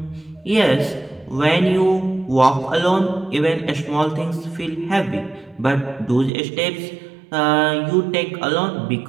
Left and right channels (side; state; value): left; drops out; at 6.3 s